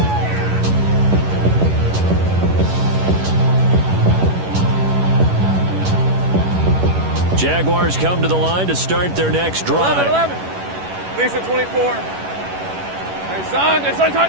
Jaguars come to the line to start their next drive. 11. Lisa 24. Hey, son.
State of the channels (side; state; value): left; late; 11 ms